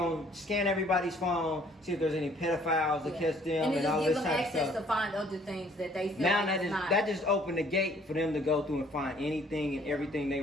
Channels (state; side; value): normal; both; correlation 0.60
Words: scan everybody's phone, see if there's any pedophiles to Yeah. catch them, and and it all just this gives them type of access stuff. to find other things that they feel Now like is not. that just opened the gate for them to go through and find anything and everything they